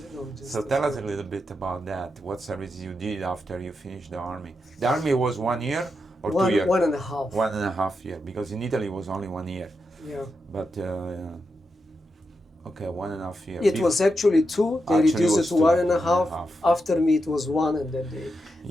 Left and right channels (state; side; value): normal; both; correlation 0.86